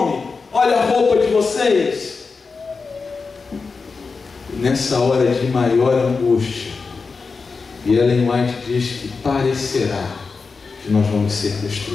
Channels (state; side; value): quieter; right; 4.6 dB